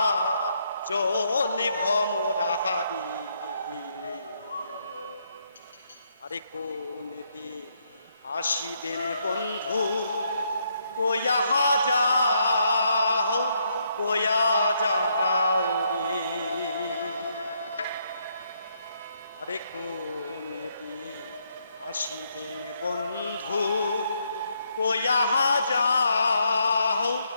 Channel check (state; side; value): inverted; both; correlation -0.75